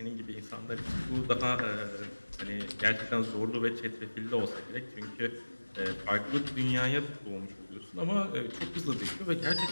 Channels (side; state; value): both; inverted; correlation -1.00